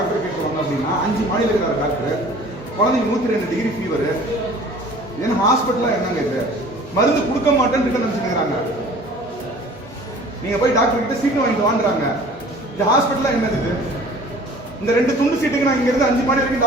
கேட்குவாங்க அப்படின்னா 5 மாடியில் இருக்கிற டாக்டர் குழந்தைங்க 102 டிகிரி ஃபீவர். ஏன்னா ஹாஸ்பிட்டலா என்னங்க இது? மருந்து கொடுக்க மாட்டேன்னு நினைச்சுக்கிறாங்க. நீங்க போய் டாக்டர் கிட்ட சீட்டு வாங்கிட்டு வாங்குறாங்க. இந்த ஹாஸ்பிட்டலா என்னது இது? இந்த 2 துண்டு சீட்டுக்கு நான் இங்க இருந்து 5 மாடி வரைக்கும்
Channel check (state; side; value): normal; both; correlation 0.48